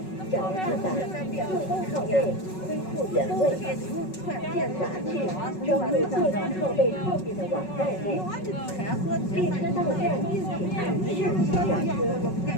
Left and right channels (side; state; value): right; late; 5.4 ms